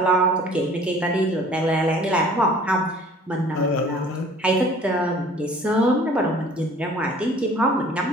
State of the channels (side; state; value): both; normal; correlation 0.51